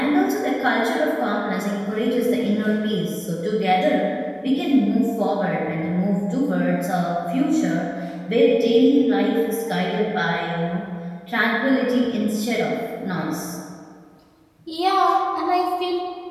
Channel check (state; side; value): identical; both; correlation 1.00